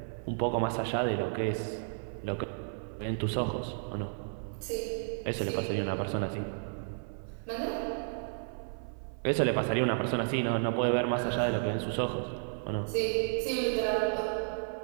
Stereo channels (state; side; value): silent; left; 56 dB below the other